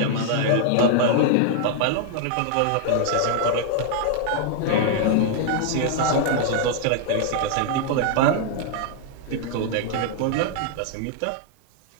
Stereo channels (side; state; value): both; different; correlation -0.01